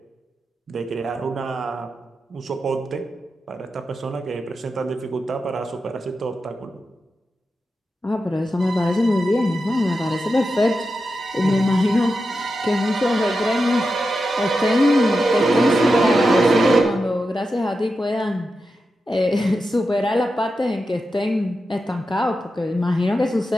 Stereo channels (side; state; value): both; normal; correlation 0.89